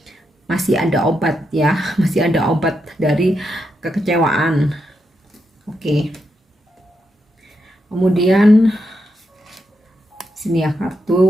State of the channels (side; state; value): both; normal; correlation 0.83